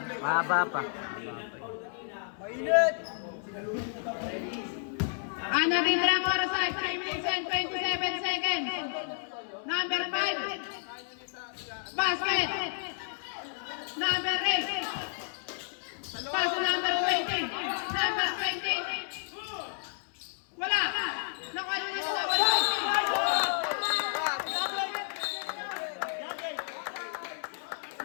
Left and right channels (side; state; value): right; silent; 57 dB below the other